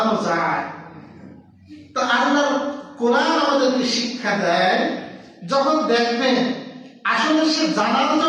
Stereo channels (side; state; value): both; identical; correlation 1.00